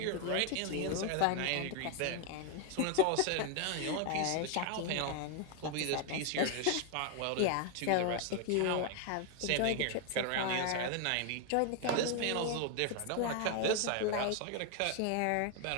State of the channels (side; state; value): both; different; correlation 0.01